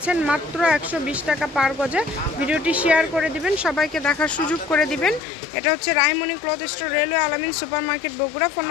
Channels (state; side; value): drops out; right; at 5.2 s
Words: মাত্র 120 টাকা পার গজে। ভিডিওটি শেয়ার করে দিবেন, সবাইকে দেখার সুযোগ করে দিবেন। এটা হচ্ছে রাহিমণি ক্লথ স্টোর, রেলওয়ে আলামিন সুপার মার্কেট, বগুড়া। ফোন